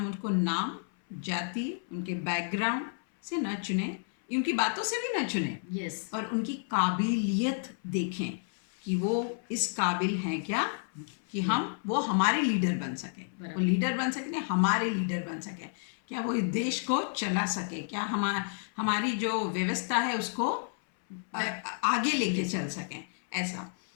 उनको नाम, जाति, उनके बैकग्राउंड से न चुने, उनकी बातों से भी न चुने। यस। और उनकी काबिलियत देखें कि वो इस काबिल हैं क्या कि वो हमारे लीडर बन सके। वो लीडर बन सके, हमारे लीडर बन सके। क्या वो इस देश को चला सके, क्या हमारी जो व्यवस्था है उसको आगे लेके चल सकें, ऐसा।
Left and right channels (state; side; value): silent; right; 57 dB below the other